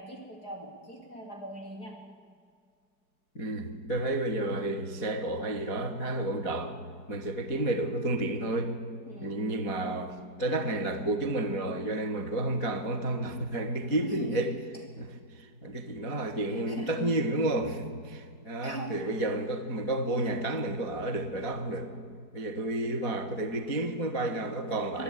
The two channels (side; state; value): right; late; 4.7 ms